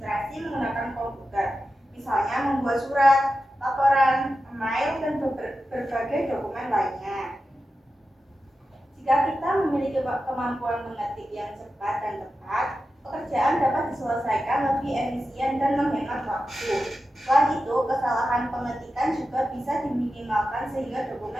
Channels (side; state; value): both; normal; correlation 0.91